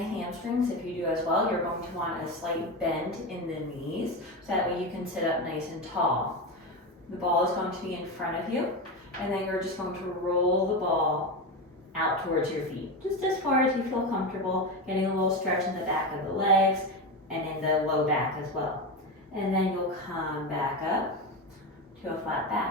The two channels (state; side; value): normal; both; correlation 0.18